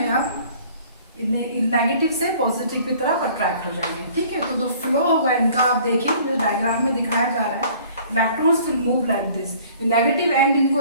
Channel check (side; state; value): both; inverted; correlation -0.53